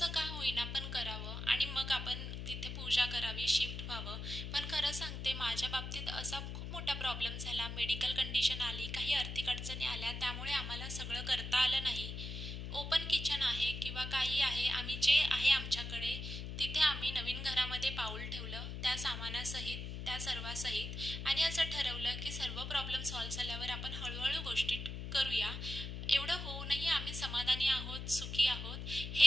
का होईना पण करावं आणि मग आपण तिथे पूजा करावी, शिफ्ट व्हावं. पण खरं सांगते माझ्या बाबतीत असा खूप मोठा प्रॉब्लेम झाला, मेडिकल कंडिशन आली, काही आर्थिक अडचणी आल्या, त्यामुळे आम्हाला सगळं करता आलं नाही. ओपन किचन आहे किंवा काही आहे, आम्ही जे आहे आमच्याकडे तिथे आम्ही नवीन घरामध्ये पाऊल ठेवलं त्या सामानासहित, त्या सर्वासहित, आणि असं ठरवलं की सर्व प्रॉब्लेम सॉल्व्ह झाल्यावर आपण हळूहळू गोष्टी करूया. एवढं होऊनही आम्ही समाधानी आहोत, सुखी आहोत,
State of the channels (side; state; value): left; noise; hum, 6 dB below the sound